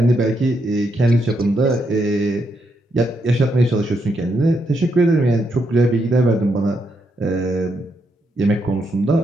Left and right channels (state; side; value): normal; both; correlation 0.79